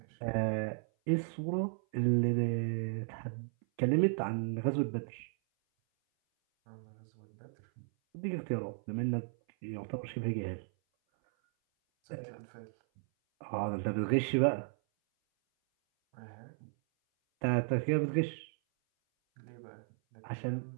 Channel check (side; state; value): left; silent; 54 dB below the other